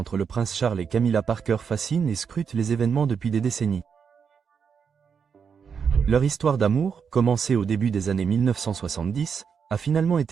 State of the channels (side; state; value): left; quieter; 6.5 dB